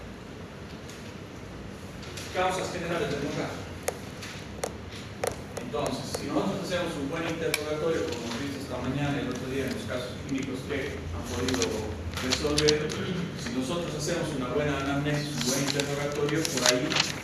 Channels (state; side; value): identical; both; correlation 1.00